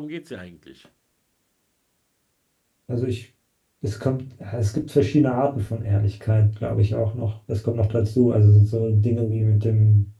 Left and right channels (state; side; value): identical; both; correlation 1.00